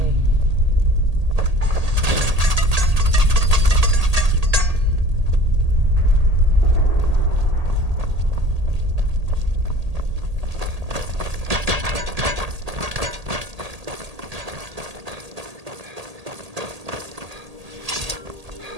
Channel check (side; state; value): left; late; 1.8 ms